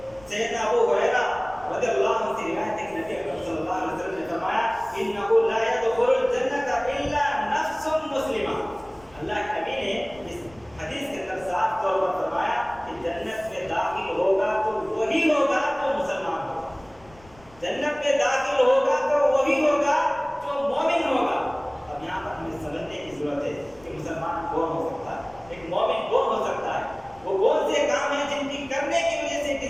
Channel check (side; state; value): left; noise; rumble, 25 dB below the sound